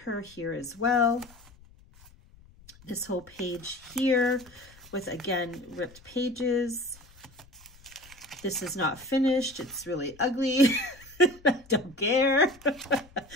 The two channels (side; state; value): left; noise; rumble, 25 dB below the sound